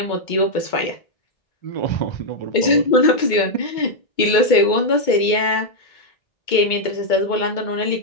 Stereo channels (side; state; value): right; late; 2.2 ms